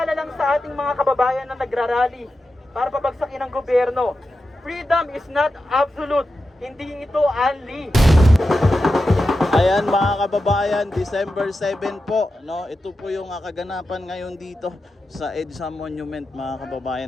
lang sa ating mga kababayan na nagrarally para pabagsakin ang gobyerno. Freedom is not absolute. Hindi ito unli. Ayan mga kababayan, December 7 po, no? Ito po yung kaganapan ngayon dito sa EDSA Monument mga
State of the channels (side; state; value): both; normal; correlation 0.90